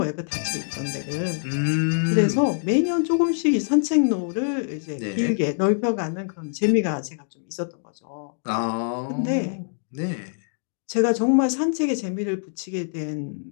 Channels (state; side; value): silent; right; 62 dB below the other